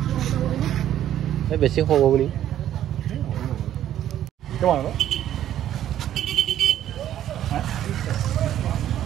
বেছি সৰু বুলি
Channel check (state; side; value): quieter; left; 11.5 dB